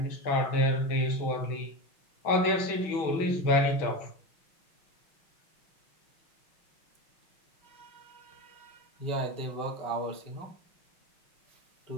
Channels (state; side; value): late; right; 6.2 ms